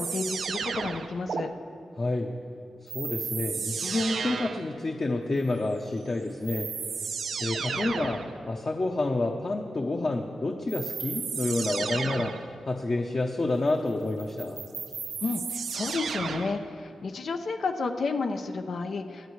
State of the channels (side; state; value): both; normal; correlation 0.89